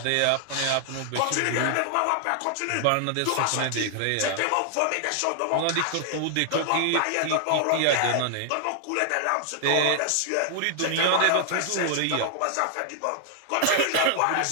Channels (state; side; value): different; both; correlation 0.00